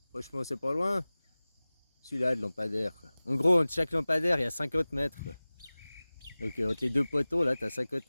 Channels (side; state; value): both; inverted; correlation -0.99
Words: Franchement, c'est pas loin. Celui-là de lampadaire, quoi. En gros, entre chaque lampadaire, il y a 50 mètres, quoi. Donc entre les deux poteaux, là, t'as 50